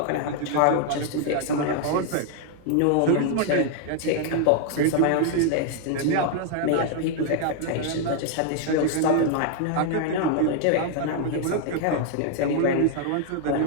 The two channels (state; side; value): different; both; correlation 0.00